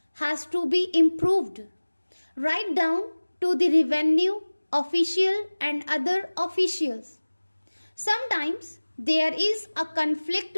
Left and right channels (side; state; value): both; inverted; correlation -1.00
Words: has to be improved, right down to the revenue official and other officials. Sometimes there is a